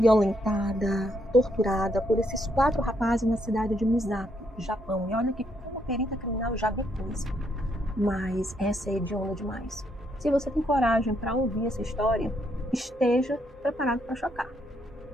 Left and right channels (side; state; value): both; normal; correlation 0.75